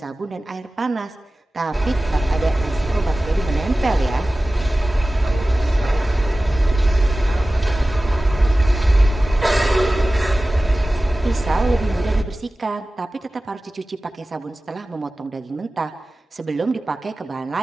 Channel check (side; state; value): both; normal; correlation 0.96